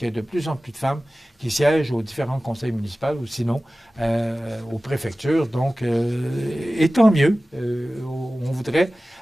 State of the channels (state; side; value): normal; both; correlation 0.97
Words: y a de plus en plus de femmes qui siègent aux différents conseils municipaux ou sinon aux préfectures. Donc, et tant mieux. On voudrait